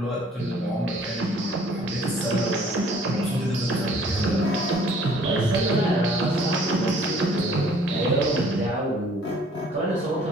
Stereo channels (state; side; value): normal; both; correlation 0.56